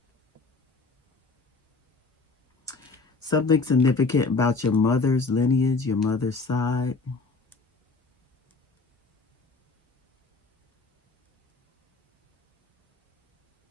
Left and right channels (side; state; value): right; quieter; 4.0 dB